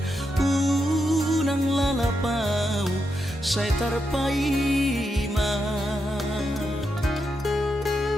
unang lalapau saya terpaima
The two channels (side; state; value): both; normal; correlation 0.84